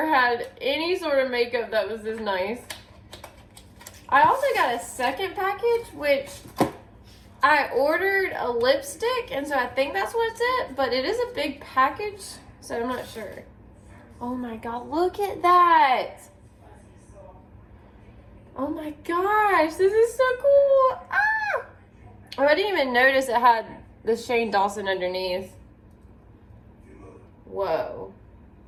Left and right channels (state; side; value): identical; both; correlation 1.00